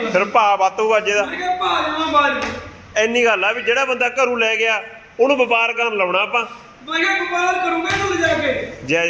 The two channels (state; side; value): identical; both; correlation 1.00